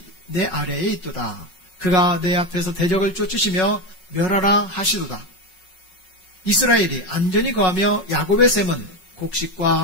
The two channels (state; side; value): late; right; 5.4 ms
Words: 내 아래에 있도다. 그가 내 앞에서 대적을 쫓으시며 멸하라 하시도다. 이스라엘이 안전히 거하며 야곱의 샘은